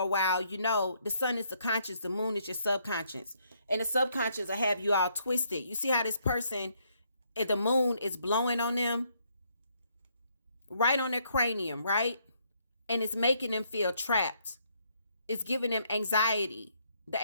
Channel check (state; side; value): inverted; both; correlation -0.71